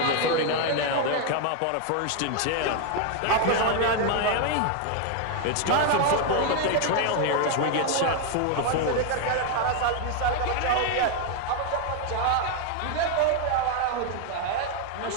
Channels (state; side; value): different; both; correlation 0.01